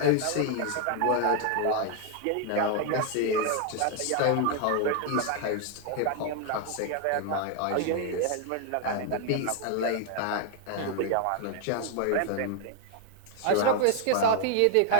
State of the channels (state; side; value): different; both; correlation 0.00